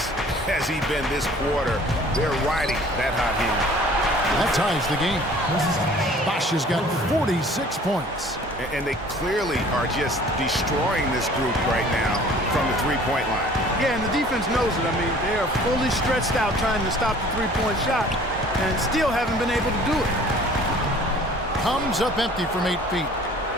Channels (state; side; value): normal; both; correlation 0.50